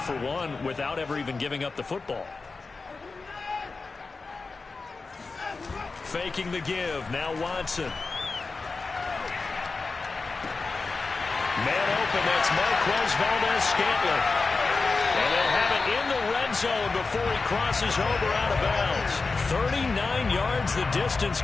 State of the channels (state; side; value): quieter; right; 4.1 dB